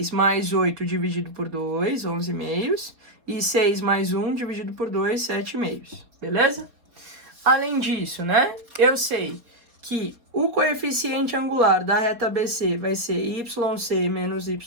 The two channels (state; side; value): late; left; 4.4 ms